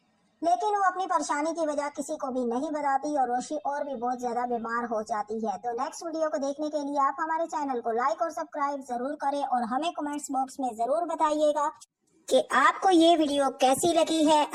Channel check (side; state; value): both; identical; correlation 1.00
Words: لیکن وہ اپنی پریشانی کی وجہ کسی کو بھی نہیں بتاتی اور روشی اور بھی بہت زیادہ بیمار ہو جاتی ہے۔ تو نیکسٹ ویڈیو کو دیکھنے کے لیے آپ ہمارے چینل کو لائک اور سبسکرائب ضرور کریں اور ہمیں کمنٹس باکس میں ضرور بتائیے گا کہ آپ کو یہ ویڈیو کیسی لگی ہے۔